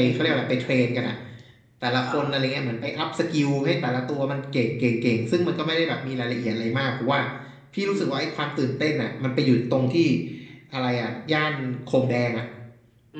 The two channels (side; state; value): both; identical; correlation 1.00